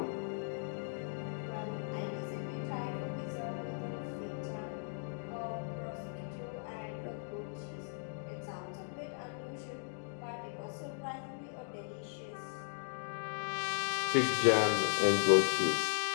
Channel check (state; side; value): silent; right; digital silence